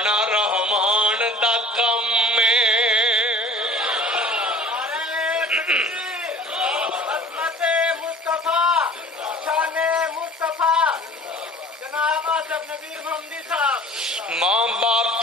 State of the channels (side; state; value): both; normal; correlation 0.46